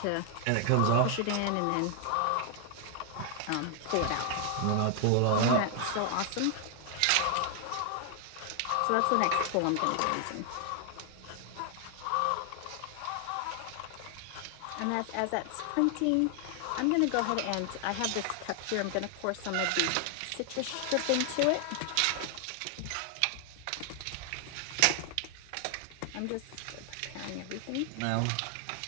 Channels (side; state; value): both; different; correlation 0.00